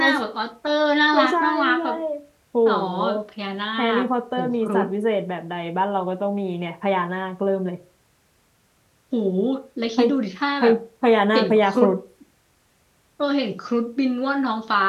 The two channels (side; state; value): both; identical; correlation 1.00